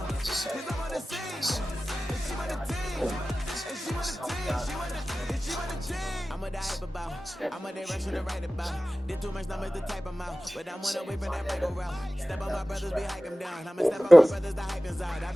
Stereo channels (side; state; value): both; normal; correlation 0.97